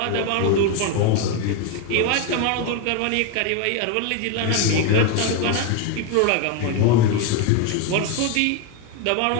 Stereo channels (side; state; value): both; different; correlation 0.02